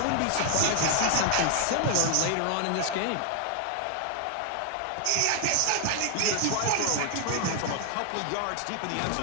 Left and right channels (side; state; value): both; different; correlation 0.00